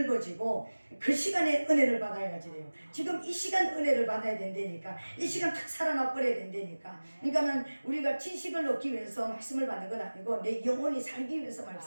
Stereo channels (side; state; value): both; inverted; correlation -1.00